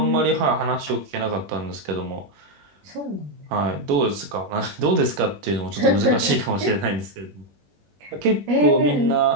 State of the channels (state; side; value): late; left; 21 ms